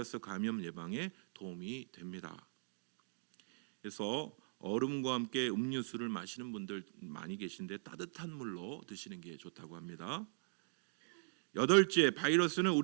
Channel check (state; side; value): silent; left; digital silence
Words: 감염 예방에 도움이 됩니다. 그래서 얼음과 함께 음료수를 마시는 분들 많이 계신데 따뜻한 물로 드시는 게 좋다고 합니다. 여덟째, 바이러스는